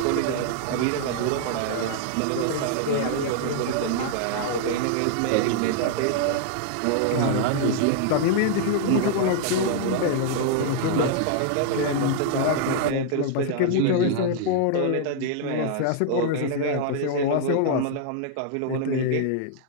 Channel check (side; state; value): both; different; correlation -0.01